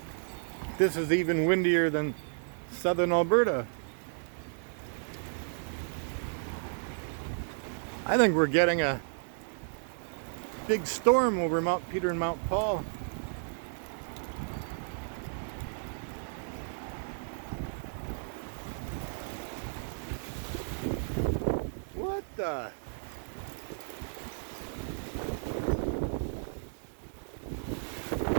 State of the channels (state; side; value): silent; left; digital silence